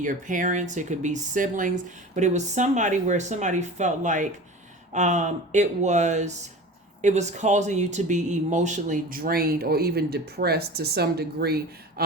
parents, it could be siblings, but it was somebody where somebody felt like it was causing you to be emotionally drained or even depressed to some degree,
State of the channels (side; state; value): both; normal; correlation 0.35